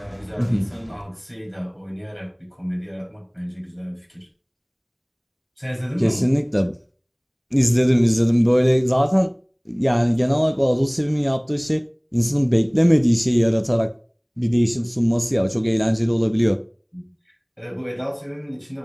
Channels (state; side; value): identical; both; correlation 1.00